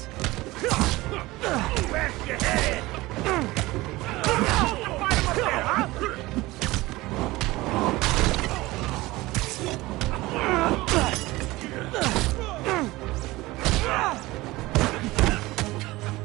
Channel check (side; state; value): left; quieter; 19.7 dB